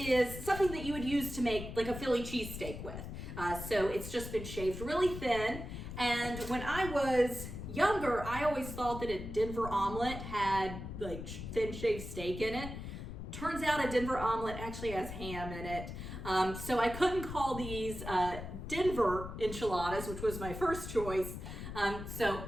something that you would use to make like a Philly cheesesteak with. So it's just been shaved really thin. And when I was younger, I always thought that a Denver omelet had like thin shaved steak in it. Turns out a Denver omelet actually has ham in it. So I couldn't call these Denver enchiladas, which was my first choice. So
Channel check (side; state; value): left; noise; rumble, 8 dB below the sound